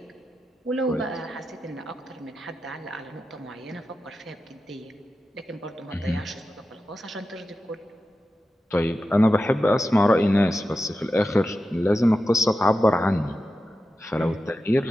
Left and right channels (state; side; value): normal; both; correlation 0.91